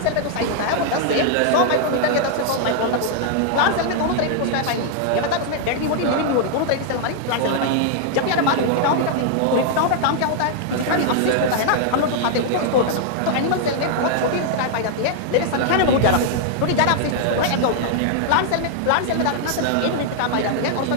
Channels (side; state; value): both; different; correlation 0.00